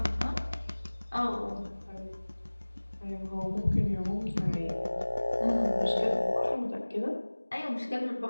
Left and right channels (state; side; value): inverted; both; correlation -1.00